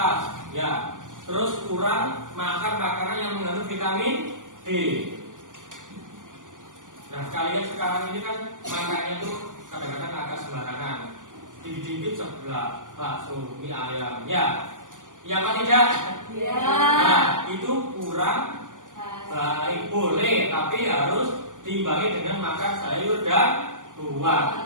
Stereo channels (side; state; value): left; late; 0.88 ms